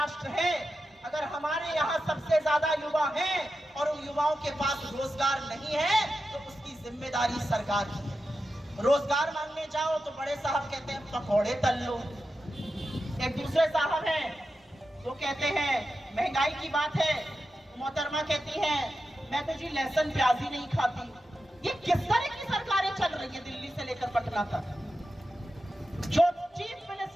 है, अगर हमारे यहाँ सबसे ज्यादा युवा हैं और उन युवाओं के पास रोजगार नहीं है, तो उसकी जिम्मेदारी सरकार की है। रोजगार मांगने जाओ तो बड़े साहब कहते हैं पकौड़े तल लो, एक दूसरे साहब हैं वो कहते हैं महंगाई की बात है, मोहतरमा कहती है मैं तो जी लहसुन प्याज ही नहीं खाती। ये किस तरह की सरकारें चल रही है दिल्ली से लेकर पटना तक? जो चीफ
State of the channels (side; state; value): both; normal; correlation 0.91